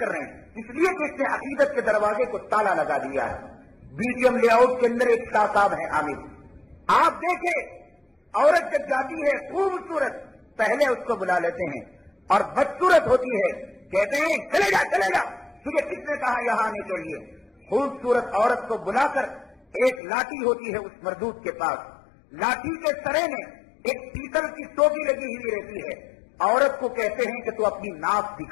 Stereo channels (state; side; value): drops out; right; at 20.0 s